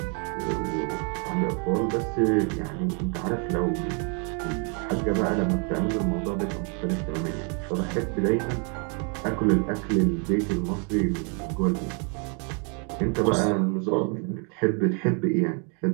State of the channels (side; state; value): left; quieter; 37.5 dB